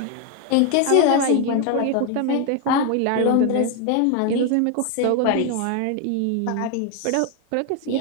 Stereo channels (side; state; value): both; different; correlation 0.01